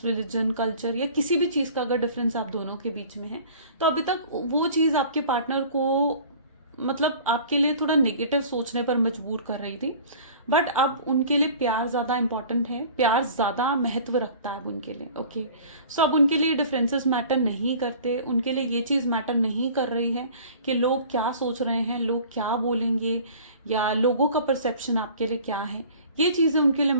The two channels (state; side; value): inverted; both; correlation -0.45